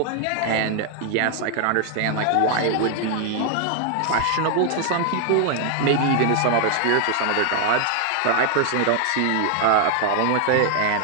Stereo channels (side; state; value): both; different; correlation 0.00